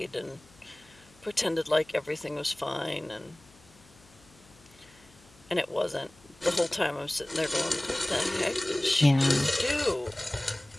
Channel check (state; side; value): noise; left; hum, 27 dB below the sound